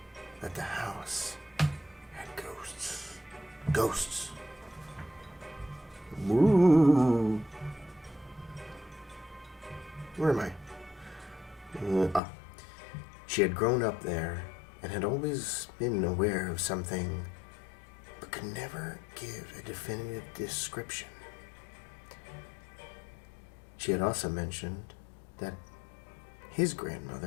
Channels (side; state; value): right; drops out; at 12.2 s